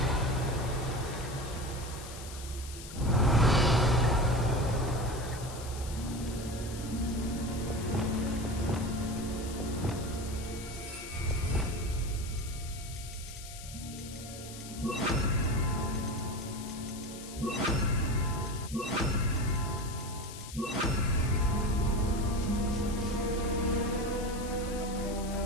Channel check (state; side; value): noise; left; hiss, 13 dB below the sound